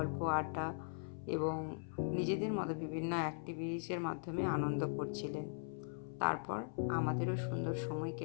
আড্ডা এবং নিজেদের মতো বিভিন্ন অ্যাক্টিভিটিসের মাধ্যমে আনন্দ করছিলেন। তারপর আমাদেরও সুন্দর সময়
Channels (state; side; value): silent; right; 51 dB below the other